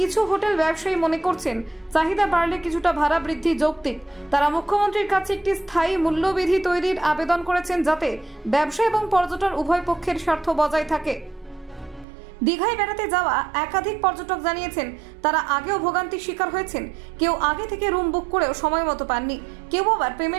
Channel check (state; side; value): drops out; left; at 12.1 s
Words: হোটেল ব্যবসায়ী মনে করছেন, চাহিদা বাড়লে কিছুটা ভাড়া বৃদ্ধি যৌক্তিক। তারা মুখ্যমন্ত্রীর কাছে একটি স্থায়ী মূল্যবিধি তৈরির আবেদন করেছেন, যাতে ব্যবসা এবং পর্যটন উভয় পক্ষের স্বার্থ বজায় থাকে। দীঘায় বেড়াতে যাওয়া একাধিক পর্যটক জানিয়েছেন, তারা আগেও ভোগান্তির শিকার হয়েছেন। কেউ আগে থেকে রুম বুক করেও সময় মতো পাননি, কেউ আবার